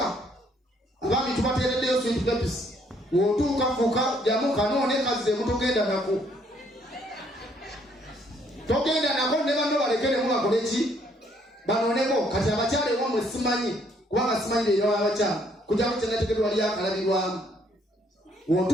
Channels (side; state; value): both; normal; correlation 0.67